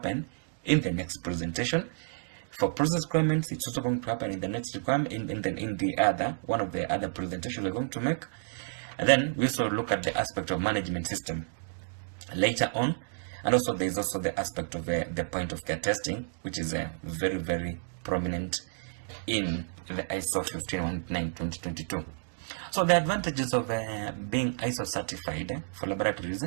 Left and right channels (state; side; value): silent; left; digital silence